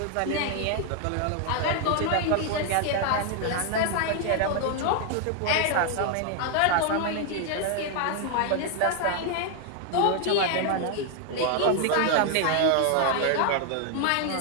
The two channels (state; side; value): different; both; correlation 0.00